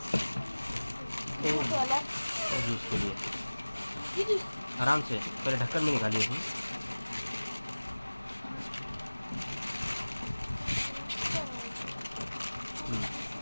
और जूस के लिए। आराम से पहले ढक्कन में निकालिए इसमें।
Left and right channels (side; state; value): both; inverted; correlation -1.00